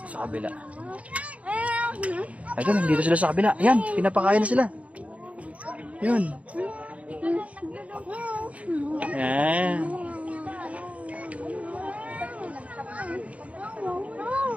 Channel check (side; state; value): left; late; 0.066 ms